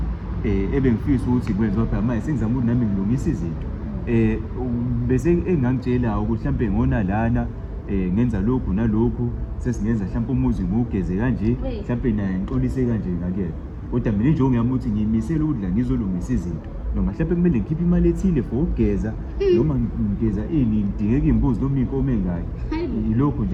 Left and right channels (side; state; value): both; identical; correlation 1.00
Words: ebengifisa ukuthi kwenziwa phela manje sengizama ukuthi nami ngilungisa izinto bese engangitshela ukuthi mhlambe ngona lana ngenza lokhu nalokhu sesingenza mhlambe umuzi ngugeze kanje mhlambe naye ngixolise kanje ngakhe kodwa mina injongo yami ukuthi ngiyimisela ukudla ngizolungisa izinto noma mhlambe kumele ngikhiphe imali ethile for ukugeza noma ngigeza ngidingeka imbuzi noma inkomo engayo yilokho